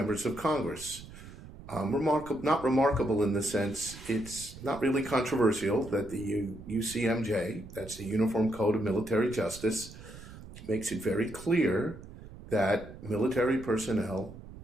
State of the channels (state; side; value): noise; right; rumble, 15 dB below the sound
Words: of Congress. Not remarkable in the sense it's not really controversial that the UCMJ, that's the Uniform Code of Military Justice, makes it very clear that military personnel